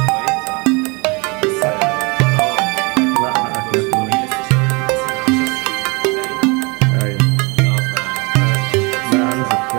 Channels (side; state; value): left; quieter; 28.9 dB